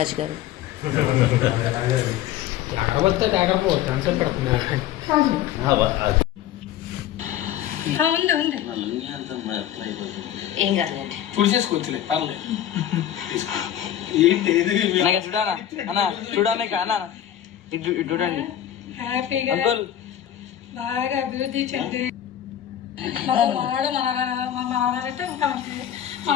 గారు. ఏం కాదులేండి, చూసేసుకోవచ్చులే పర్లేదు. చూడానా అన్న, చూడానే అన్న, ఇటు చూడండి. హ్యాపీగా బాగా అభివృద్ధి చెంది మనవాడు మనవాడంటే ఇంకా మంచిది.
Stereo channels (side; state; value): right; quieter; 11.3 dB